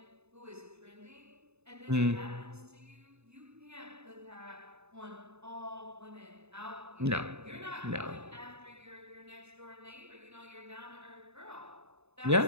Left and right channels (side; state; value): left; late; 0.80 ms